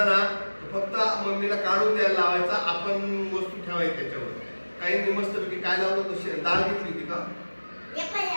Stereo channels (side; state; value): both; inverted; correlation -1.00